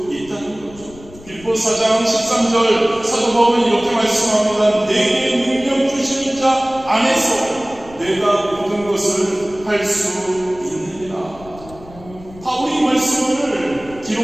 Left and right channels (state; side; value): noise; left; rumble, 20 dB below the sound